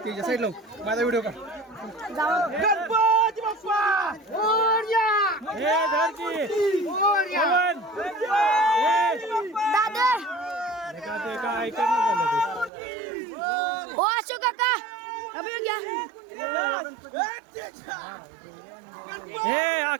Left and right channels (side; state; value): left; drops out; at 12.7 s